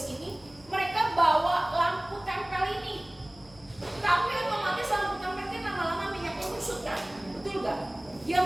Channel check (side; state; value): left; noise; hum, 25 dB below the sound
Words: ini, mereka bawa lampu tempel ini. Tapi otomatis lampu tempel ini lama-lama minyaknya menyusut kan? Betul gak? Yang